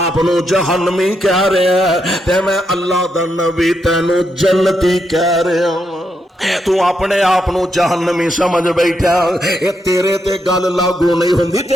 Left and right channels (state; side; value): normal; both; correlation 0.81